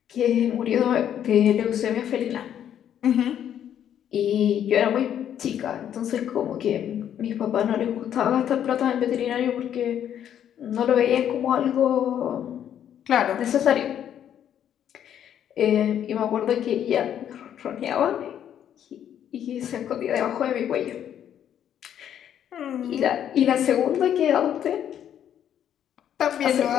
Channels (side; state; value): right; quieter; 9.9 dB